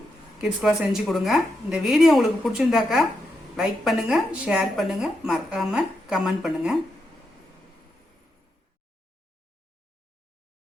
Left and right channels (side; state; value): both; normal; correlation 0.84